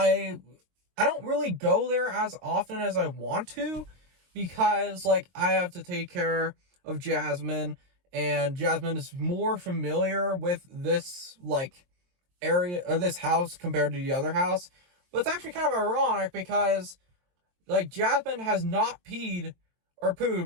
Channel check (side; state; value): left; late; 23 ms